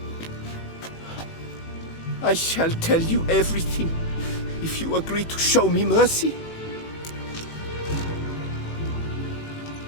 I shall tell you everything, if you agree to show me mercy.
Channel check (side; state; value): right; late; 18 ms